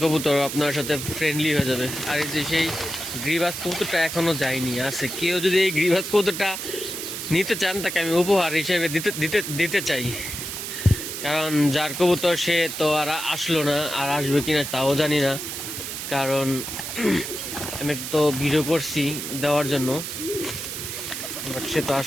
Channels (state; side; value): noise; right; hiss, 6 dB below the sound